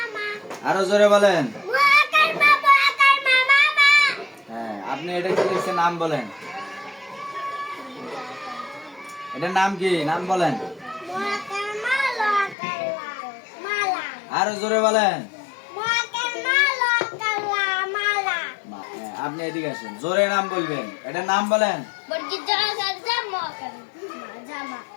আরো জোরে বলেন হ্যাঁ আপনি এটা কি লিখছেন নাম বলেন এটার নাম কি নাম বলেন আরো জোরে বলেন আপনি এদিকে আসেন জোরে নাম বলবেন এটার নাম বলেন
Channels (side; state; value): right; drops out; at 12.6 s